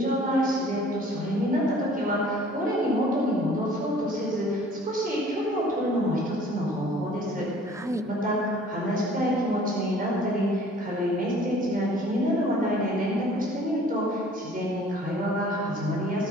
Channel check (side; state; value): both; normal; correlation 0.52